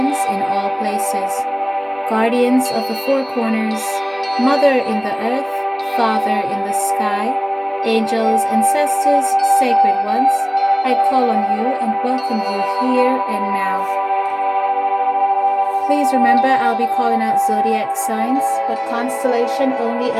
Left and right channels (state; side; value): identical; both; correlation 1.00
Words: in all places. Guardians of the four corners, Mother in the earth, Father in the sky, angels, ancestors, sacred ones, I call on you and welcome you here and now. Please remember, I'll be calling out zodiac signs, but constellation only